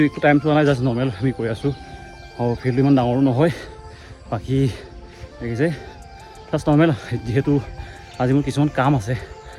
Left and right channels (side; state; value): both; identical; correlation 1.00